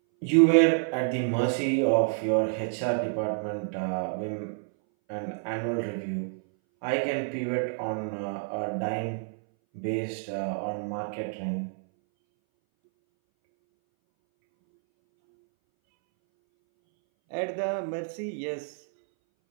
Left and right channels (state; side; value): silent; left; 59 dB below the other